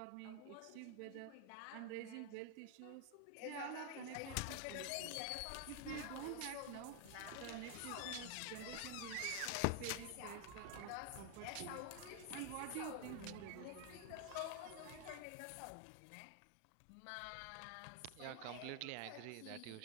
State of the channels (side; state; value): both; different; correlation 0.00